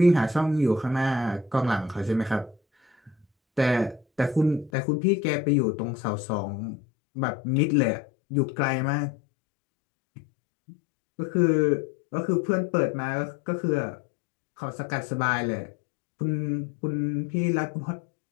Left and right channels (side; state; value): right; drops out; at 4.7 s